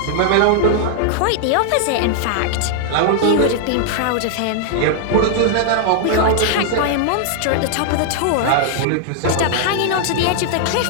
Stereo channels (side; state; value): both; different; correlation -0.01